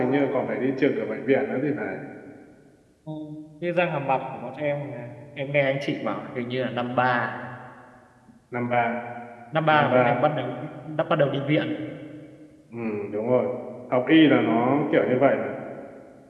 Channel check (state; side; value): identical; both; correlation 1.00